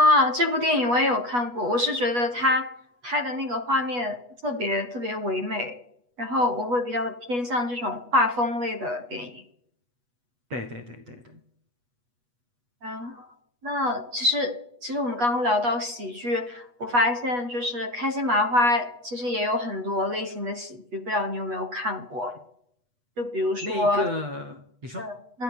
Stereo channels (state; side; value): late; left; 8.2 ms